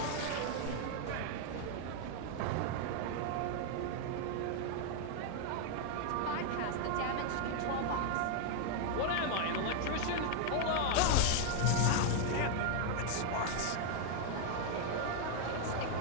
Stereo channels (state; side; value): different; both; correlation 0.00